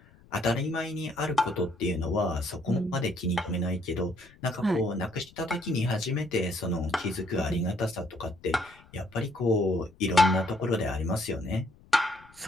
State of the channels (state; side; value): noise; left; rumble, 26 dB below the sound